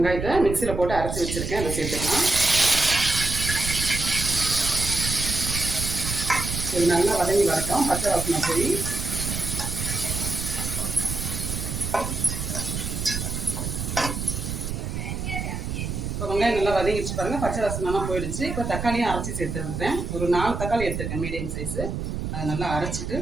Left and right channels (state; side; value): noise; right; rumble, 4 dB below the sound